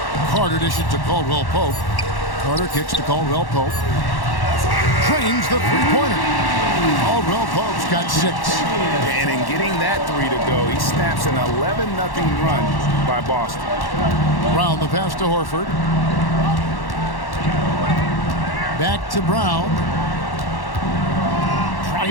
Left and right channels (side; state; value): right; late; 1.1 ms